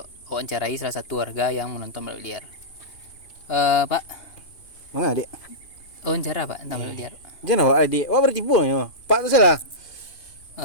awak mencarai salah satu warga yang menonton balap liar. Pak. Mana adik? Wawancara Pak tentang balap liar. Jangan awak adik. Awak bertipu ya. Pak tu salah.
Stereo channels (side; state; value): right; late; 2.8 ms